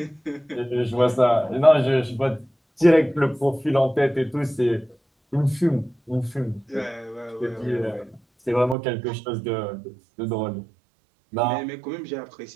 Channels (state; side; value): drops out; left; at 8.8 s